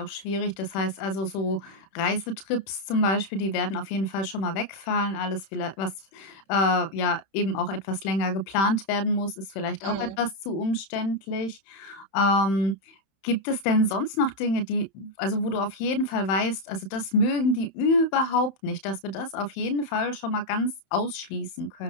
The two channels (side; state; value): right; late; 31 ms